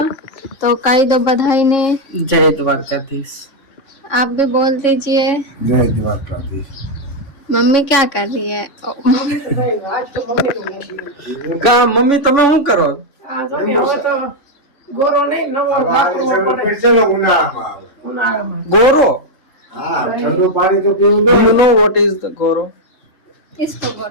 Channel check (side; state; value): right; late; 3.5 ms